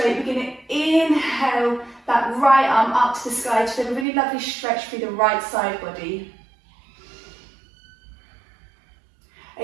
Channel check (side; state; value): left; drops out; at 4.0 s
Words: we're going to inhale that right arm up to the sky to feel a really lovely stretch through the right side body.